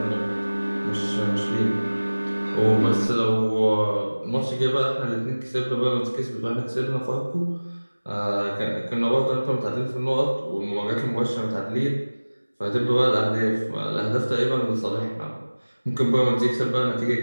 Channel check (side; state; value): both; inverted; correlation -1.00